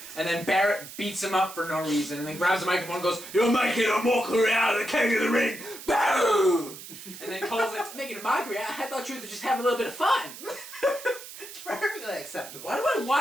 And then Barrett beats him up for no reason, and then grabs the microphone and goes, "You're making a mockery out of the King of the Ring! Boom!" And then Cole's like, "Making a mockery? I thought you were just having a little bit of fun." It's perfectly acceptable. Why do I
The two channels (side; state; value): right; noise; hiss, 14 dB below the sound